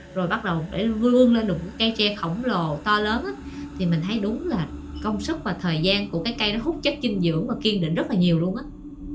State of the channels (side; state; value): both; identical; correlation 1.00